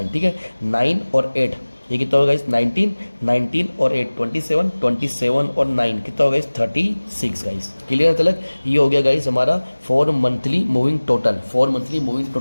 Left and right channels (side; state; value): both; inverted; correlation -1.00